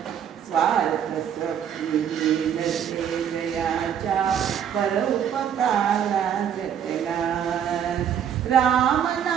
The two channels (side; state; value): left; quieter; 8.8 dB